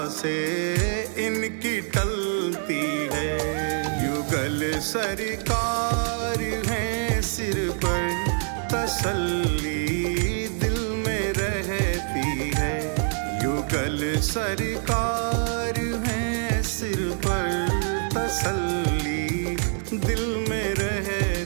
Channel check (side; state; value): left; silent; digital silence